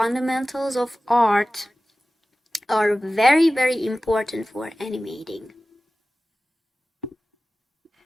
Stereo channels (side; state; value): both; normal; correlation 0.96